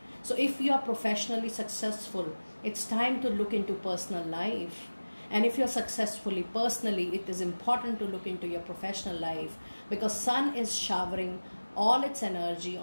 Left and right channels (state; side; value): inverted; both; correlation -1.00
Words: So if you are professionally successful, it's time to look into personal life. And if you're successfully personally, it is important to look into your professional life, because sun is showering all its energy